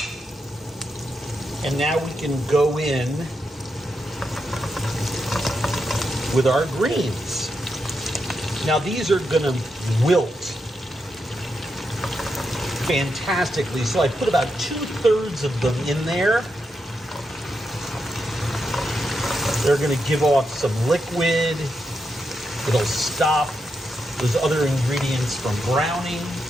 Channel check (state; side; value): normal; both; correlation 0.84